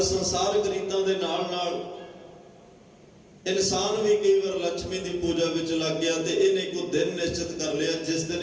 संसारक रीतां दे नाल नाल इंसान भी कई बार लक्ष्मी की पूजा विच लग गया। तो इन्हें को दिन निश्चित कर लिया जिस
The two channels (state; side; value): identical; both; correlation 1.00